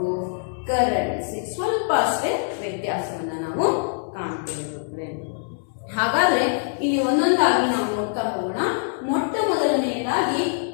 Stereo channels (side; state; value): right; silent; digital silence